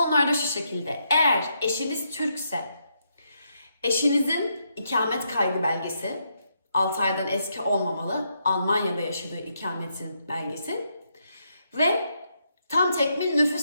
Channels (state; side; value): inverted; both; correlation -0.79